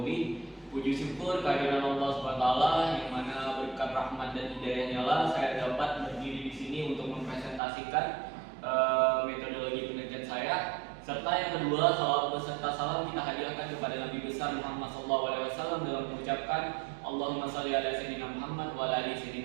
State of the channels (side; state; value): left; drops out; at 7.6 s